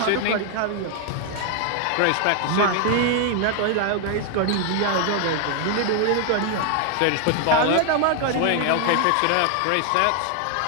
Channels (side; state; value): both; different; correlation 0.00